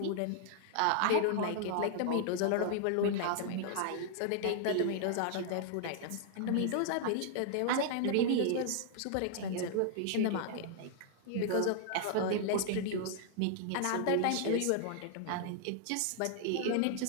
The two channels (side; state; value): both; different; correlation 0.00